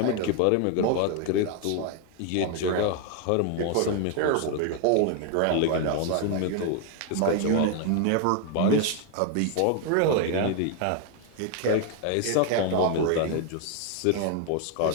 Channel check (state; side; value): different; both; correlation 0.01